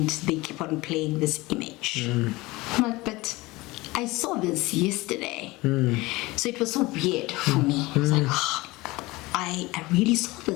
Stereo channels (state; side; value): quieter; right; 21.2 dB